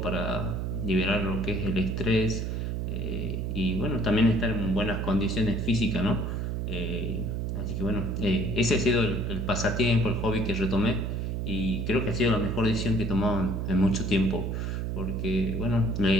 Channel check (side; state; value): right; noise; hum, 2 dB below the sound